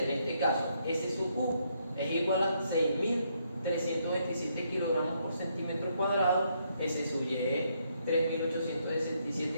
En este caso S sub U es igual a 6.327 kilogramos por centímetro cuadrado, S sub Y es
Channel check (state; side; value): inverted; both; correlation -0.74